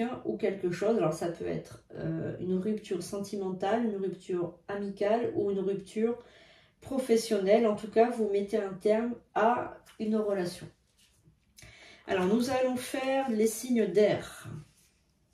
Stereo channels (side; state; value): both; identical; correlation 1.00